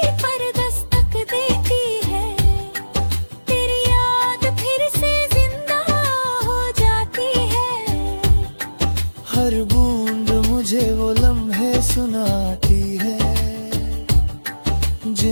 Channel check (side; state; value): both; inverted; correlation -1.00